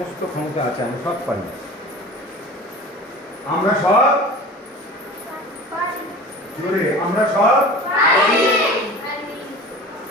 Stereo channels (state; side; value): normal; both; correlation 0.38